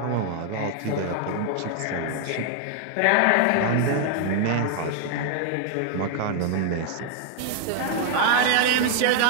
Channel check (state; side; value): different; both; correlation 0.00